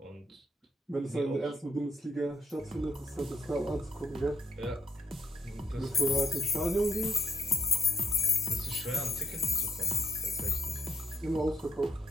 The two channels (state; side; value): normal; both; correlation 0.75